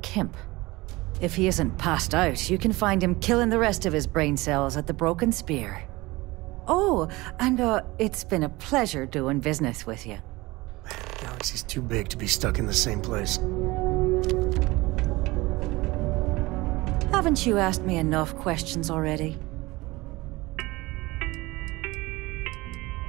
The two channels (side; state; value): left; quieter; 21.2 dB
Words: Kemp. If he isn't passed out, you can find him killing the rest of his brain cells at the Broken Spear. Oh, and it's been a pleasure doing business with you. The galaxy's too big to be stuck in the same place. Haven't you asked me enough questions already?